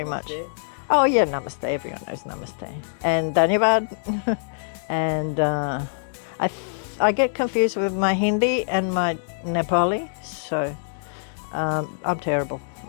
much. Oh yeah, namaste, everyone knows namaste. And dhanyavad. And I get confused with my Hindi and my Nepali, so I'm terrible.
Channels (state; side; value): silent; right; digital silence